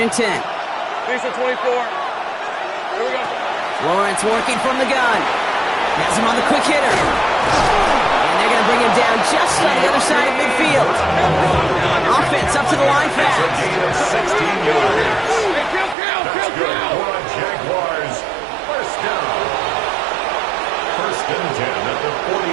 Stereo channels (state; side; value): drops out; left; at 16.0 s